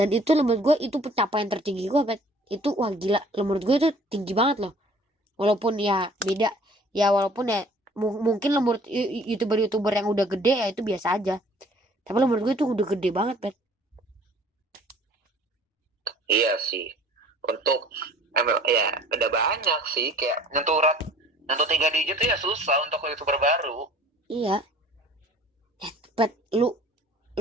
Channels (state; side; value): normal; both; correlation 0.52